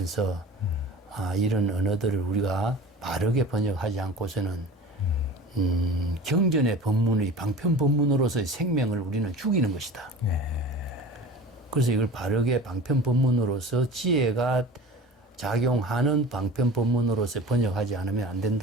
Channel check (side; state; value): both; normal; correlation 0.37